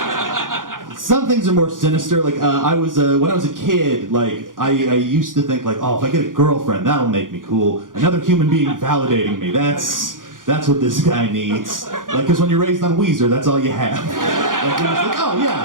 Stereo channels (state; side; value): late; left; 0.89 ms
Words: Some things are more sinister. Like, when I was a kid, like, I used to think, like, oh, if I get a girlfriend, that'll make me cool. Another human being validating me. That's what this guy needs. Like, because when you're raised on Weezer, that's all you have. Like, you're just like, oh,